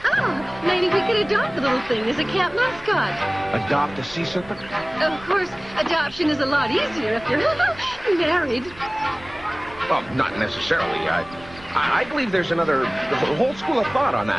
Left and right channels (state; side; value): noise; right; rumble, 21 dB below the sound